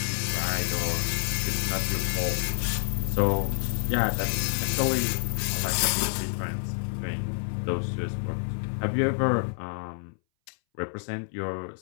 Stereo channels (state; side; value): silent; right; 59 dB below the other